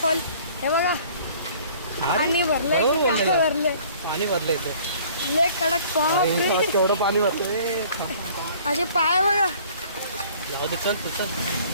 हे बघा पाणी भरलंय. बरोबर बोललेलं. भरलंय पाणी भरलं इथं. लय कडक बापरे. केवढं पाणी भरतंय. माझे पाय बघा. जाऊ दे, चल तू चल,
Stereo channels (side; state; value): both; inverted; correlation -0.53